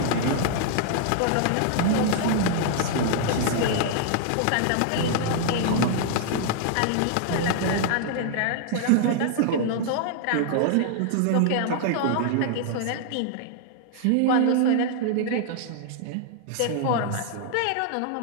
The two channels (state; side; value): different; both; correlation -0.01